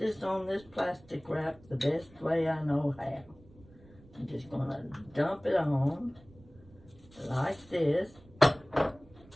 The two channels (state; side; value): noise; right; rumble, 24 dB below the sound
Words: on this plastic wrap the best way I know how. I'm just going to dump it on like this.